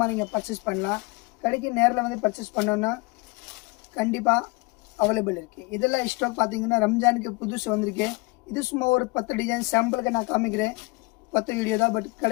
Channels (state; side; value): quieter; right; 26.1 dB